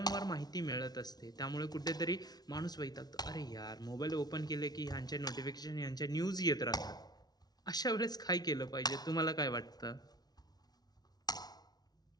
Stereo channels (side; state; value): right; late; 0.19 ms